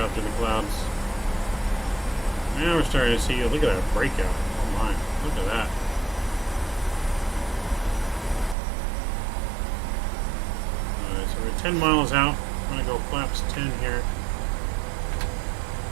through the clouds. Now we're starting to see, look at that breakout. Oh my, look at that. Alright, so we're 10 miles out. I'm going to go flaps 10 here.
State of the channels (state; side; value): drops out; left; at 8.6 s